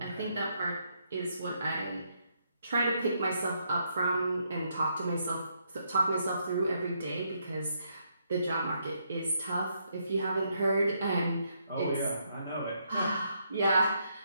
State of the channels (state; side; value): inverted; both; correlation -0.76